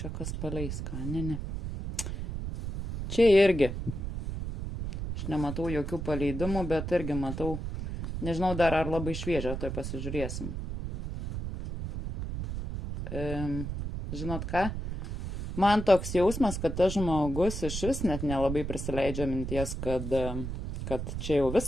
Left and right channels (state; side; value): noise; right; rumble, 5 dB below the sound